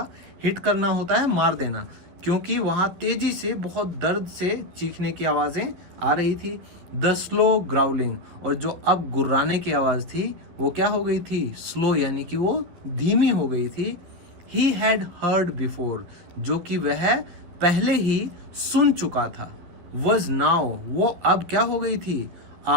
हिट करना होता है मार देना, क्योंकि वहां तेजी से बहुत दर्द से चीखने की आवाजें आ रही थी। द स्लो ग्राउलिंग, और जो अब गुर्राने की आवाज थी वो क्या हो गई थी, स्लो यानी कि वो धीमी हो गई थी। ही हैड हर्ड बिफोर, जो कि वह पहले ही सुन चुका था। वॉज नाउ, वो अब क्या हो गई थी, a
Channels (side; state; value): left; late; 12 ms